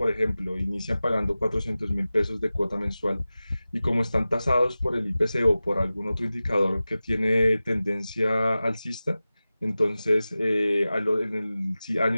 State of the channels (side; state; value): both; inverted; correlation -0.96